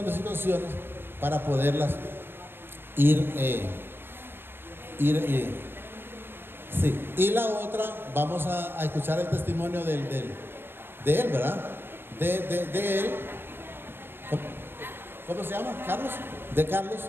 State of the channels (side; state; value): left; late; 0.10 ms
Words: de situaciones para poderlas ir sí. Y la otra, vamos a escuchar el testimonio de él, ¿verdad? De él. ¿Cómo se llama? ¿Carlos? De Carlos,